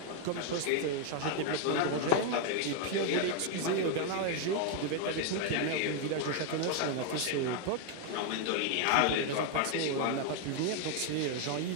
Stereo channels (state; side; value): different; both; correlation 0.01